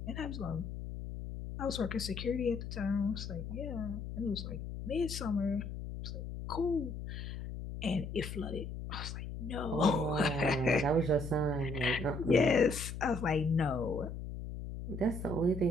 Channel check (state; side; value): noise; left; hum, 7 dB below the sound